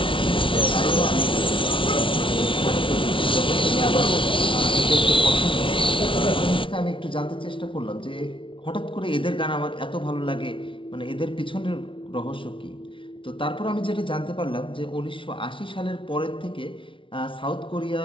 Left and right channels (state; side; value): late; right; 0.25 ms